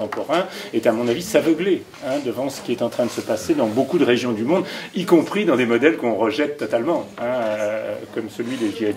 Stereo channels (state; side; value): identical; both; correlation 1.00